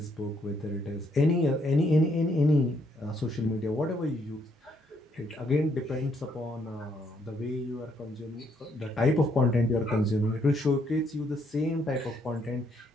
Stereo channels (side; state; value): both; normal; correlation 0.72